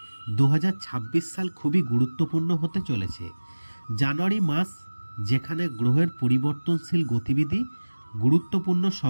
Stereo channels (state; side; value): inverted; both; correlation -1.00